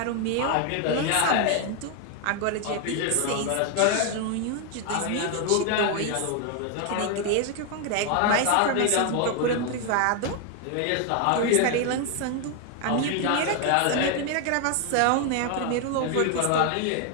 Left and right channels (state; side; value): different; both; correlation 0.01